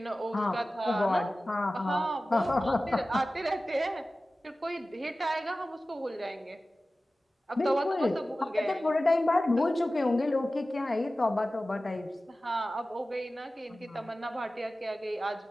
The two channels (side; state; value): both; normal; correlation 0.96